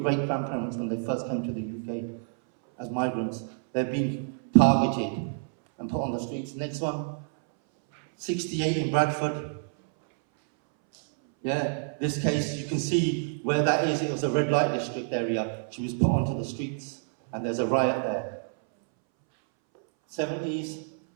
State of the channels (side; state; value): left; silent; 59 dB below the other